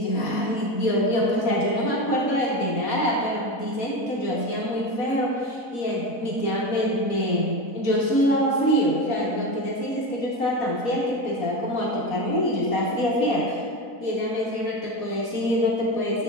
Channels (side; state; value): right; late; 4.0 ms